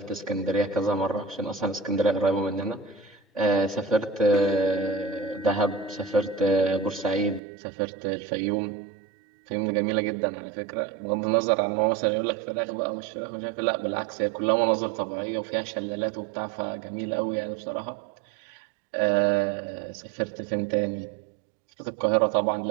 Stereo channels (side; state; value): left; drops out; at 7.4 s